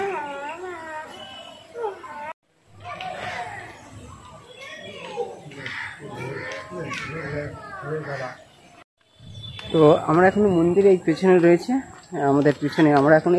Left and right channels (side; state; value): both; identical; correlation 1.00